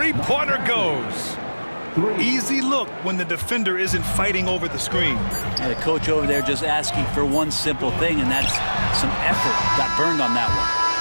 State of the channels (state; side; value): inverted; both; correlation -1.00